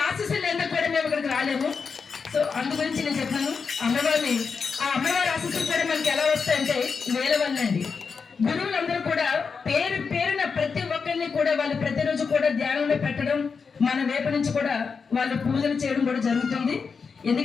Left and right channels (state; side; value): quieter; right; 5.4 dB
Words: ఆశీస్సులు ఎందుకు కూడా మేము ఇక్కడికి రాలేము. సో అందు గురించి నేను చెప్తాను. అమ్మవారిని ఆ అమ్మవారి ఆశీస్సులు కూడా మనకి ఎలా వస్తాయంటే వేల వల్ల అండి. గురువులందరూ కూడా పేరున ప్రతి ఒక్కరిని కూడా వాళ్ళు ప్రతిరోజు కూడా ధ్యానంలో పెట్టడం, మన వైపు నుంచి కూడా వాళ్ళు పూజలు చేయడం కూడా జరుగుతుంది.